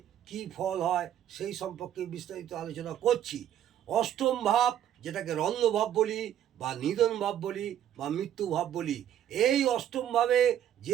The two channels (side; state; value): left; quieter; 10.7 dB